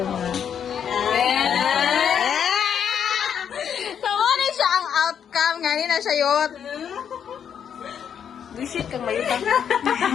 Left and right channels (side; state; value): right; quieter; 8.2 dB